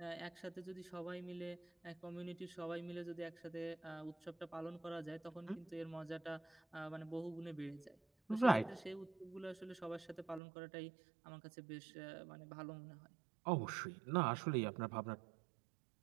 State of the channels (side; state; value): left; drops out; at 10.4 s